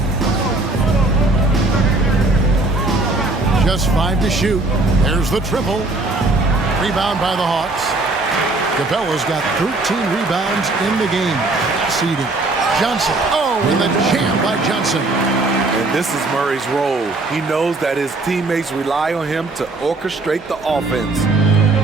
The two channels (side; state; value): left; quieter; 3.1 dB